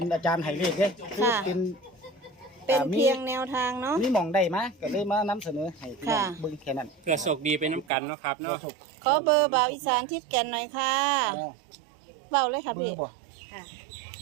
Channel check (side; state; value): left; drops out; at 7.9 s